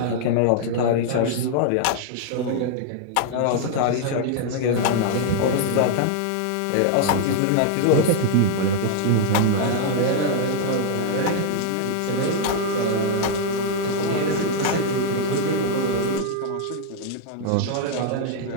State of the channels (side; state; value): both; different; correlation 0.00